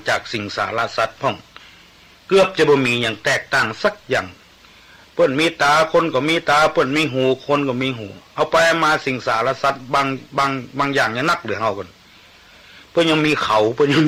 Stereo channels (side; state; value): both; identical; correlation 1.00